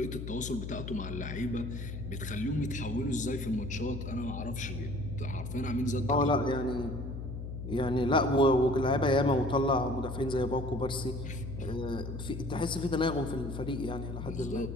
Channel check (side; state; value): left; noise; hum, 7 dB below the sound